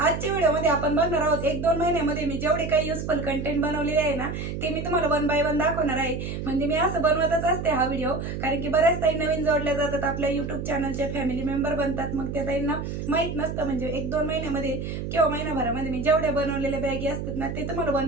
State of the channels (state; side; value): noise; right; hum, 5 dB below the sound